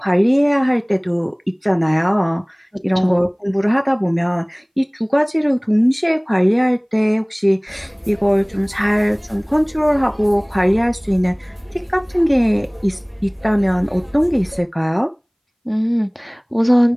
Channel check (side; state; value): both; identical; correlation 1.00